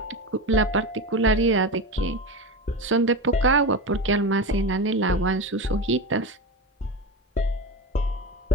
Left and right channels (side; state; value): both; normal; correlation 0.22